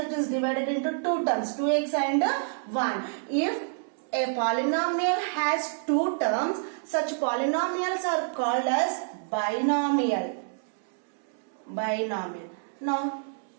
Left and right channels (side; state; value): left; silent; digital silence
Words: it is divided into two terms, 2x and 1. If a polynomial has two terms, such polynomials are called as binomial. Binomial. Now,